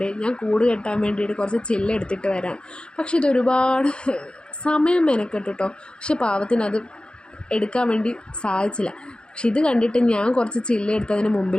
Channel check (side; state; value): right; late; 0.051 ms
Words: ഞാൻ കൂട് കെട്ടാൻ വേണ്ടിയിട്ട് കുറച്ച് ചില്ലെടുത്തിട്ട് വരാം. പക്ഷെ ഇതൊരുപാട് സമയം മെനക്കെട്ടു കേട്ടോ. പക്ഷെ പാവത്തിന് അത് എടുക്കാൻ വേണ്ടി സാധിച്ചില്ല. പക്ഷെ ഇത് കണ്ടിട്ട് ഞാൻ കുറച്ച് ചില്ലെടുത്ത് അതിന്